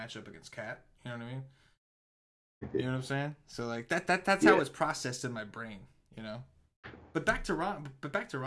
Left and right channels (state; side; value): identical; both; correlation 1.00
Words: against Cat. You know what I mean? You know what I'm saying? So like that's how it's processed in my brain, you know? But back to Rondo.